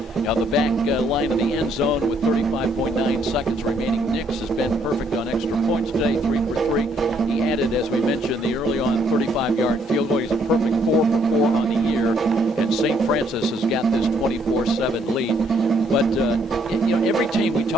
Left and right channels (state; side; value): normal; both; correlation 0.68